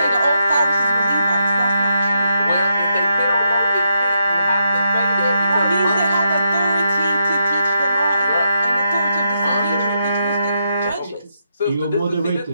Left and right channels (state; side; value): inverted; both; correlation -0.80